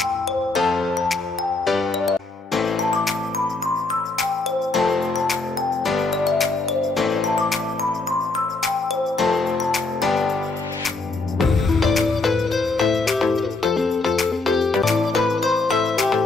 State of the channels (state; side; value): quieter; right; 3.4 dB